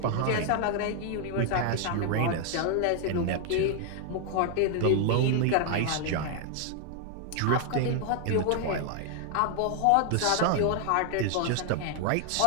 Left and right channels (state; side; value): different; both; correlation 0.00